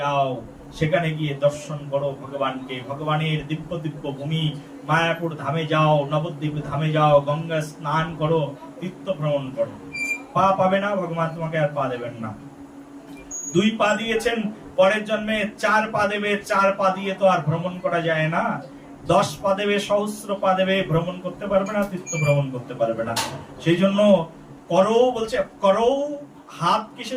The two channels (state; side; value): identical; both; correlation 1.00